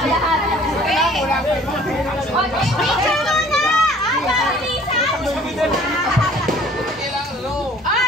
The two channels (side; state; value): both; normal; correlation 0.53